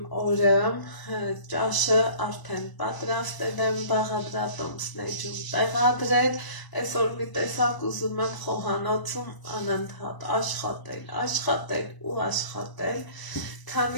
օրը, ճաշը արդեն պատրաստել եմ, բաղադրատոմսներում տեղադրել, այսօր մի տեսակ ուզում եմ խոհանոցում անընդհատ աշխատել ու աշխատել,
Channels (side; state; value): right; late; 1.0 ms